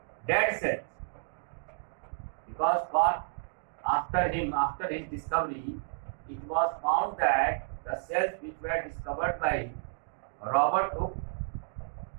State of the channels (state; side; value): silent; left; digital silence